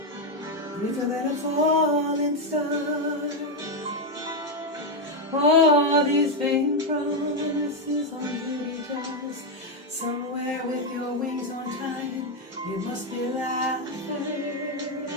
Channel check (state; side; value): normal; both; correlation 0.05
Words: little little falling star. All these vain promises on duty jars. Somewhere with your wings on time, you must be laughing.